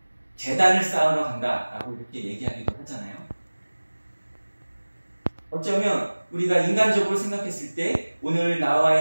제단을 쌓으러 간다라고 이렇게 얘기하기도 하잖아요. 어쩌면 우리가 인간적으로 생각했을 때 오늘 나와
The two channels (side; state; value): both; inverted; correlation -1.00